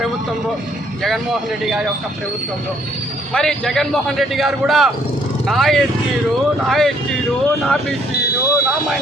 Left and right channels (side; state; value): both; normal; correlation 0.66